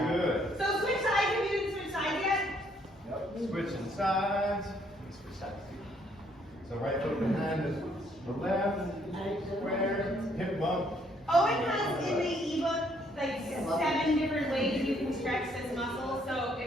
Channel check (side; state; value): both; normal; correlation 0.68